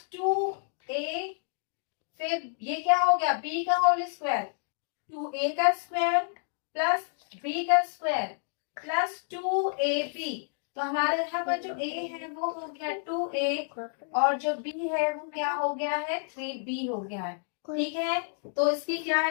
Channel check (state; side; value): silent; right; digital silence